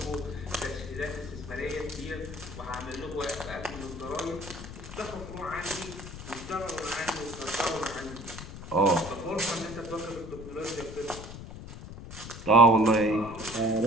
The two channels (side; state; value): left; noise; rumble, 11 dB below the sound